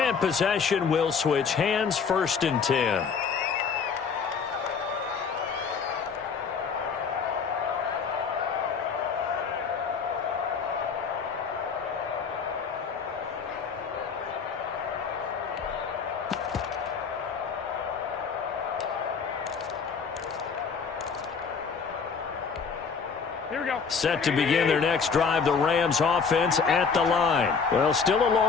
possession will switch hands, 1st and 10. Set to begin their next drive, the Rams offense at the line. Well, still a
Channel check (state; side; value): quieter; right; 5.8 dB